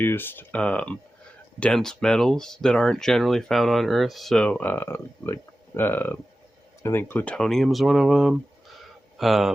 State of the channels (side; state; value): both; normal; correlation 0.94